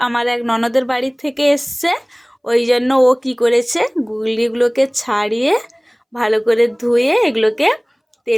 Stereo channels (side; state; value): both; identical; correlation 1.00